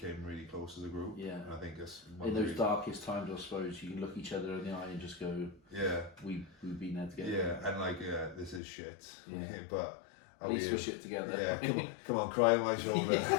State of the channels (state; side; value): drops out; right; at 8.6 s